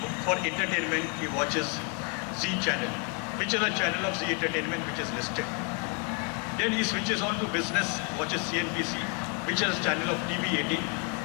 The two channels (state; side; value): quieter; right; 32.5 dB